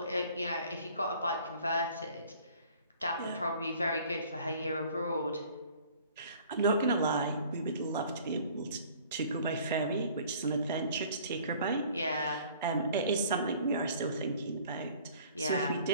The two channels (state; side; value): inverted; both; correlation -0.53